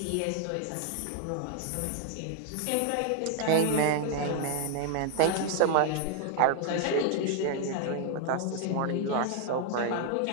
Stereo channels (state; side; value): different; both; correlation 0.00